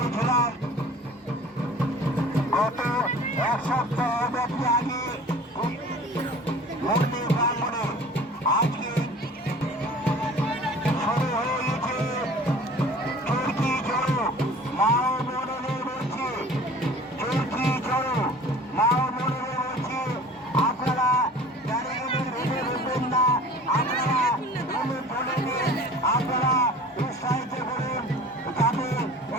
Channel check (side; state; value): both; normal; correlation 0.44